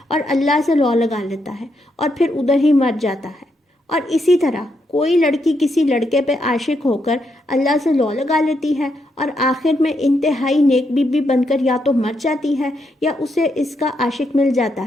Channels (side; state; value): both; normal; correlation 0.80